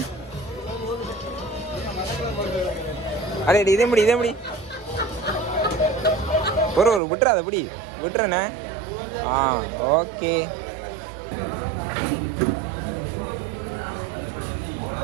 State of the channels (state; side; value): drops out; left; at 7.0 s